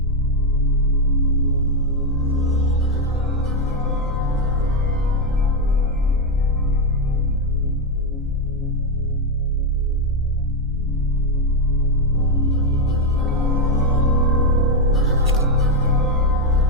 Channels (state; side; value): normal; both; correlation 0.06